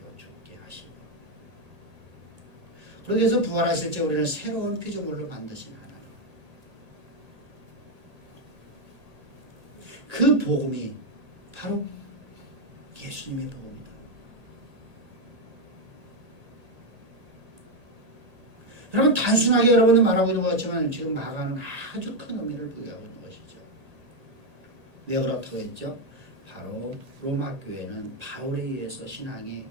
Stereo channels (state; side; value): late; left; 1.8 ms